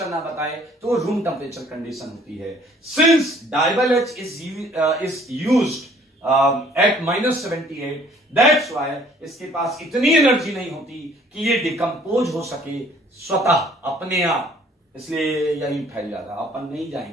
ना बताए तो वो रूम टेम्परेचर कंडीशन होती है। Since DIBAL H is used at -78, that's why इसके पास इतनी एनर्जी नहीं होती कि ये डिकम्पोज हो सके स्वतः अपने आप, इसलिए यही फैल जाता। अपन नहीं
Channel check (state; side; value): normal; both; correlation 0.57